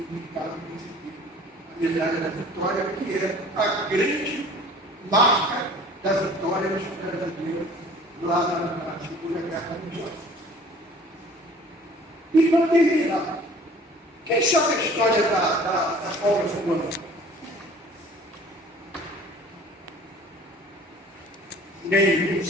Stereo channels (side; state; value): both; normal; correlation 0.49